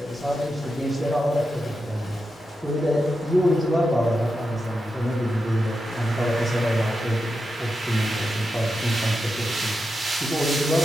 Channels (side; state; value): both; normal; correlation 0.88